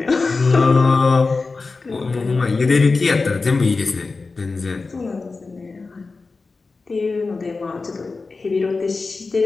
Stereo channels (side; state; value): right; quieter; 4.0 dB